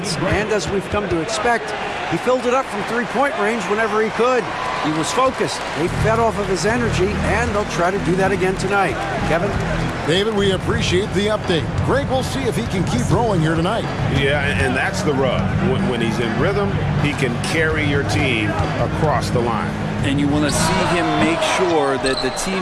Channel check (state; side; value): identical; both; correlation 1.00